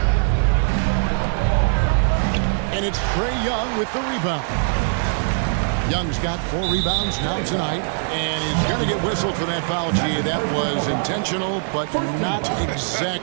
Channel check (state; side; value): silent; left; digital silence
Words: And it's Trae Young with the rebound. Young's got 4 rebounds now tonight, and he's going to get whistled for that foul. Gee, that was intentional, but not